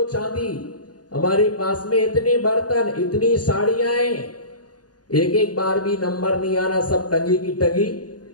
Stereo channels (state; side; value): late; right; 0.69 ms